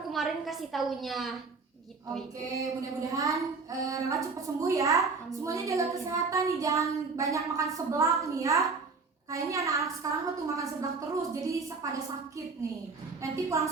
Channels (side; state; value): left; quieter; 4.4 dB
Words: kemarin kasih taunya. Gitu, Oke, mudah-mudahan Rela cepat sembuh ya. Amin. Semuanya jaga kesehatan nih, jangan banyak makan seblak nih ya. Kayaknya anak-anak sekarang tuh makan seblak terus, jadi pada sakit nih. Nanti pulang